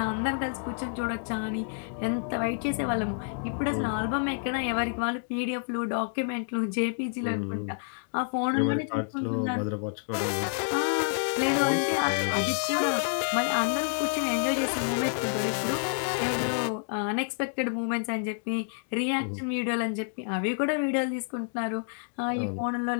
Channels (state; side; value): silent; right; digital silence